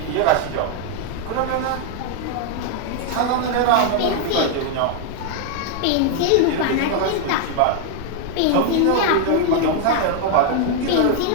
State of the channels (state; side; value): different; both; correlation 0.00